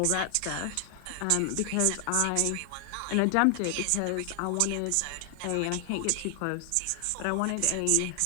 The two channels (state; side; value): different; both; correlation 0.00